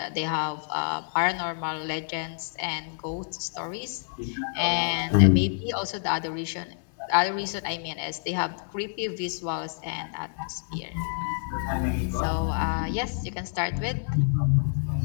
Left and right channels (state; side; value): silent; right; 59 dB below the other